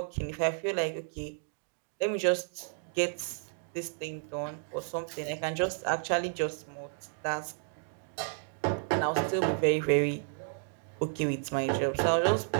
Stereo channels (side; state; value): left; silent; digital silence